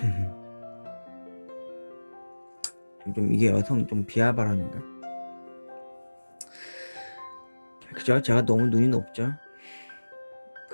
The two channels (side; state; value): both; inverted; correlation -1.00